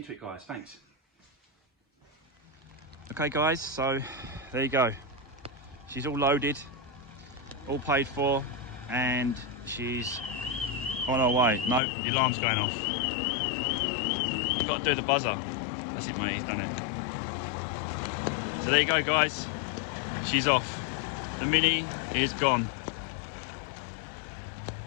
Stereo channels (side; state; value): right; drops out; at 11.8 s